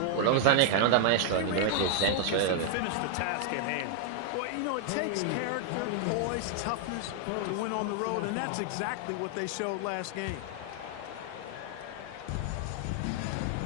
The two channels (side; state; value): both; different; correlation 0.00